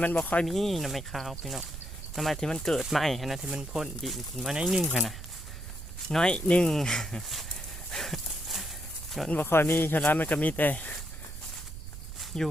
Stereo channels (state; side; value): noise; right; rumble, 10 dB below the sound